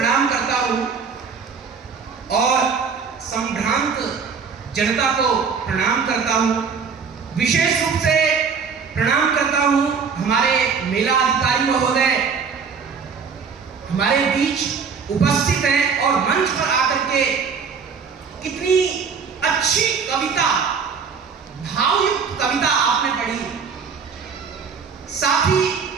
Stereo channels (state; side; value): quieter; left; 5.8 dB